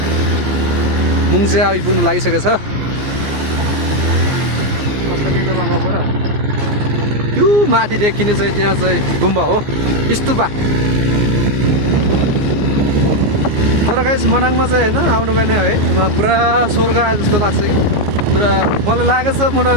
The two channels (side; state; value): left; late; 14 ms